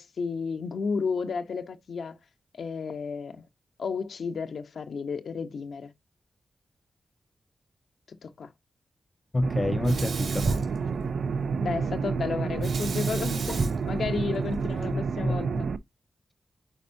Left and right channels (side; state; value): both; normal; correlation 0.85